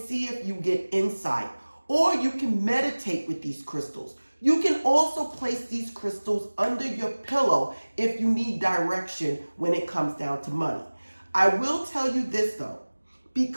if you get insight. Or you can meditate with these crystals. You can also place these crystals under your pillow if you need direction when it comes down to money. I will tell you this though,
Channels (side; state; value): both; inverted; correlation -1.00